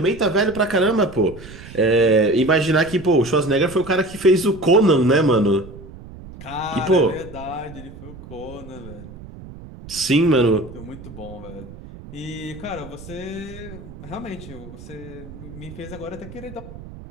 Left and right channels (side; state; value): right; noise; rumble, 16 dB below the sound